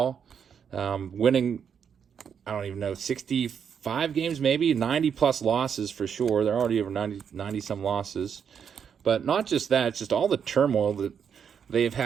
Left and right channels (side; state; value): left; quieter; 7.4 dB